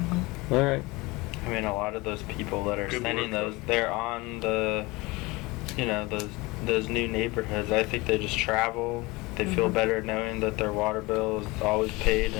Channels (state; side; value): quieter; right; 23.1 dB